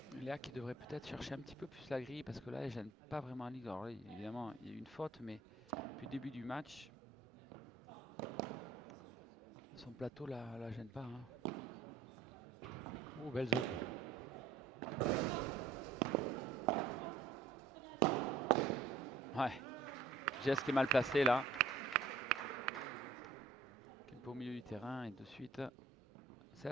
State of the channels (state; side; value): quieter; left; 3.8 dB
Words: Léa qui devrait peut-être chercher un petit peu plus la grille parce que là, elle gêne pas vraiment Alix. Alors là, évidemment, il y a eu une faute, mais depuis le début du match, son plateau la gêne pas, hein. Oh, belle zone. Ouais. Jess qui est mal placé là. Qui est un peu au milieu du terrain et de suite, c'est